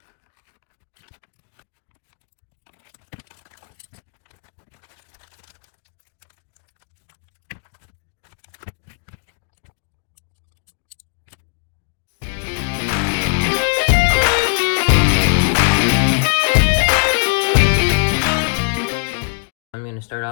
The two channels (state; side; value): silent; right; digital silence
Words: I'm going to start